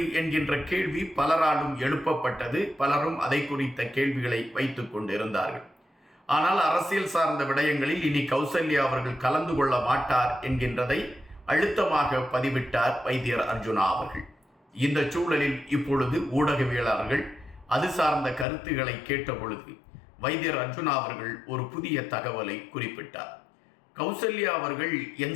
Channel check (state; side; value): drops out; right; at 18.4 s